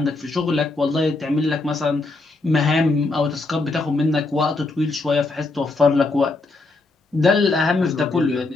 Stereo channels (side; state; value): right; quieter; 3.4 dB